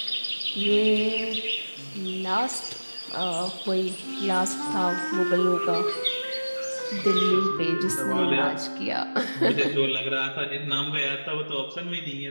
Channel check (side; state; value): both; inverted; correlation -1.00